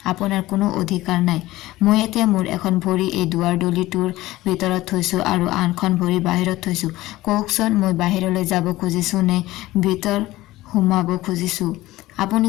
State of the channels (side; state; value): right; quieter; 17.4 dB